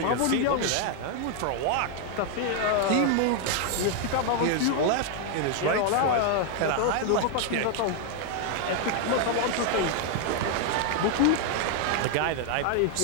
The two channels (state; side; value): different; both; correlation 0.00